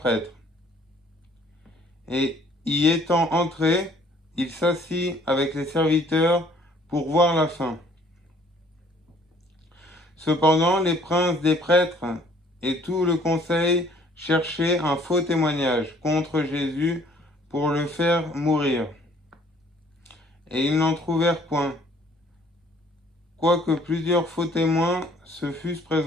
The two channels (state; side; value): normal; both; correlation 0.58